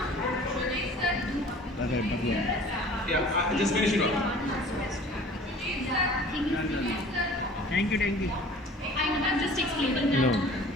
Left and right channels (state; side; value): normal; both; correlation 0.47